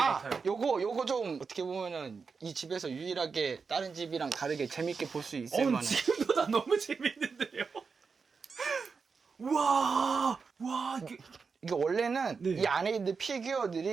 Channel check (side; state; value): left; quieter; 5.2 dB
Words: 같아요. 요거 좀 어떻게 보면은 이 집에서 유일하게 다른 집이랑 다르게 재밌게 볼 수 있을 만한. 지금보다 너무 재밌는데요. 와, 이게 원래는 네. 이 안에 있는